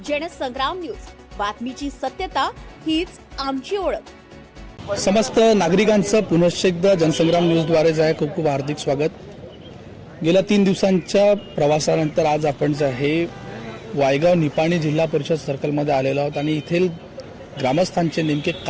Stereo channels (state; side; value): identical; both; correlation 1.00